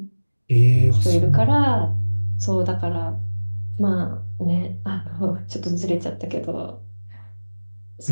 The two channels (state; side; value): inverted; both; correlation -1.00